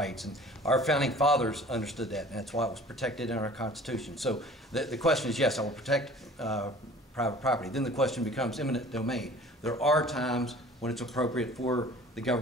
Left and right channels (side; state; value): both; normal; correlation 0.47